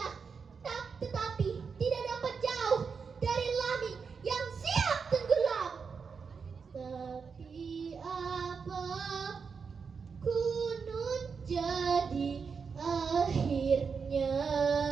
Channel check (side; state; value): left; quieter; 5.6 dB